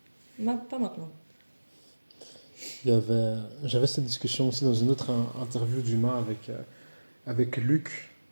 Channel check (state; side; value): inverted; both; correlation -1.00